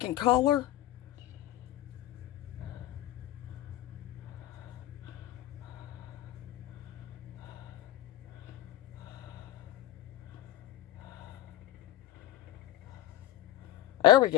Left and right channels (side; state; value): right; quieter; 14.1 dB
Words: color. There we